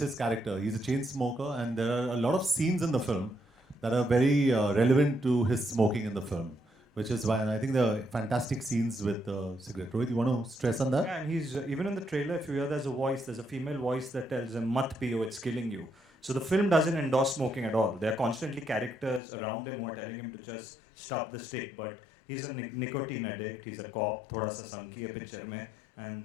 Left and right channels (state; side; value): drops out; right; at 19.2 s